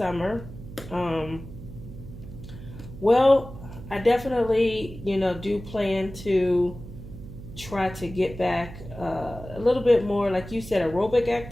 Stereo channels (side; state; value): right; noise; hum, 13 dB below the sound